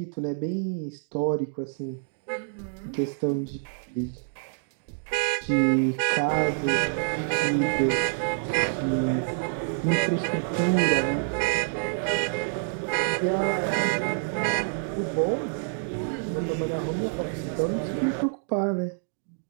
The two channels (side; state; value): left; silent; digital silence